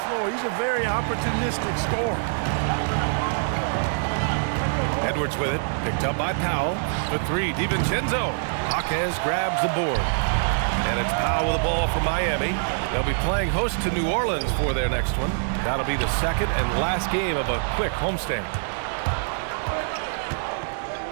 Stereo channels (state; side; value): silent; left; digital silence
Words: floor. He's a very opportunistic scorer. Edwards with it, picked up by Powell. For three, DiVincenzo. Jaquez grabs the board. And it's Powell with the ball for Miami. They'll be playing host to New Orleans for their next one. That'll be the second and last game of a quick homestand.